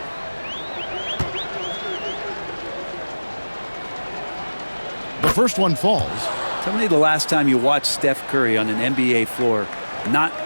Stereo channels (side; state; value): both; inverted; correlation -1.00